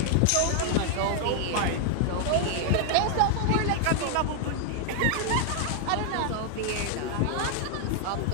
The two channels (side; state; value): both; different; correlation 0.00